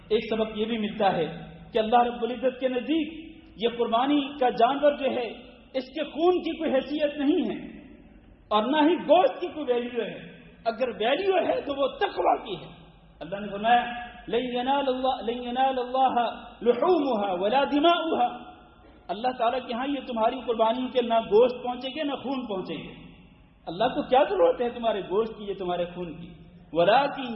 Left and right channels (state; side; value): identical; both; correlation 1.00